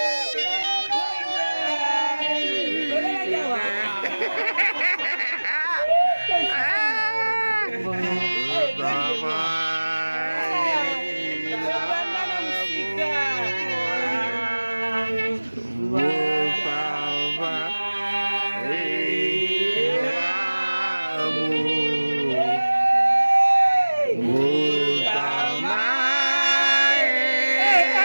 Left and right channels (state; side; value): inverted; both; correlation -1.00